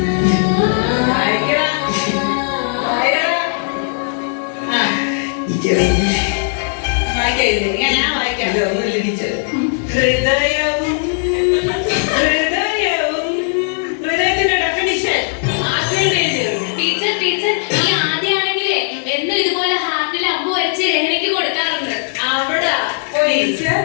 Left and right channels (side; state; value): right; silent; digital silence